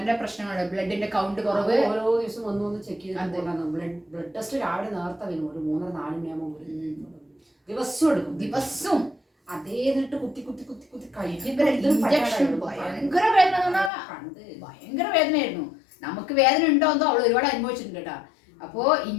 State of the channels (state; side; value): drops out; right; at 13.9 s